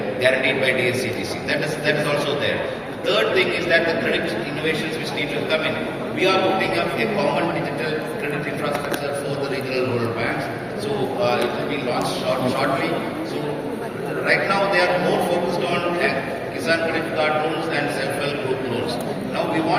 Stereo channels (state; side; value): identical; both; correlation 1.00